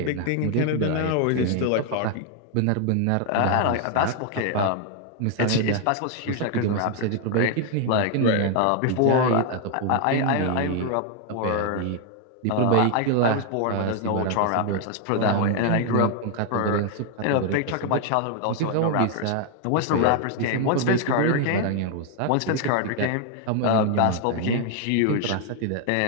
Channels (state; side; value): different; both; correlation 0.00